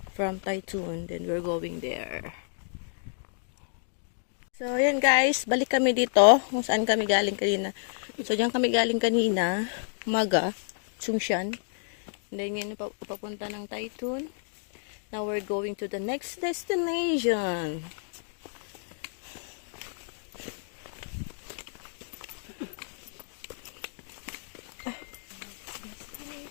From Taytun. Then we're going there. So yan guys. Balik kami dito. Kung saan kami galing kanina. So diyan kami galing kanina. Umaga. Tsungshan. And then yun papunta ng Taytun. Now we're going to the next destination.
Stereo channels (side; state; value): right; silent; digital silence